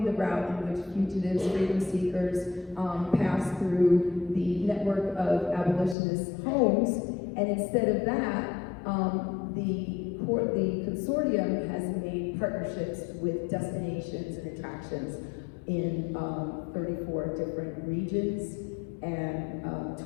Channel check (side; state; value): right; drops out; at 6.0 s